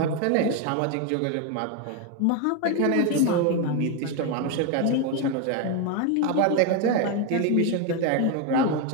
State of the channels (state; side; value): different; both; correlation 0.01